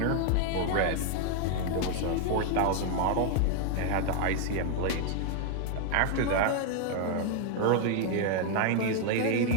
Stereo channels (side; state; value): both; different; correlation 0.00